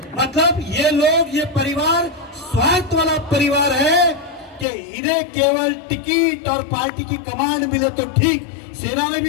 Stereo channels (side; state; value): right; drops out; at 4.7 s